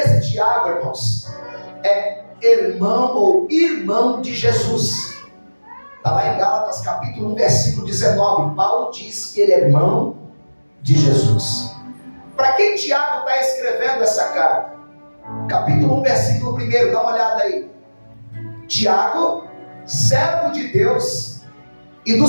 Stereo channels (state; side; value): inverted; both; correlation -1.00